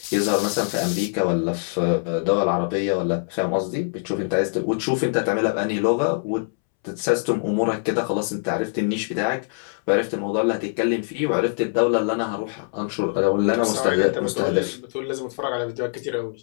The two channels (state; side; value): silent; right; 63 dB below the other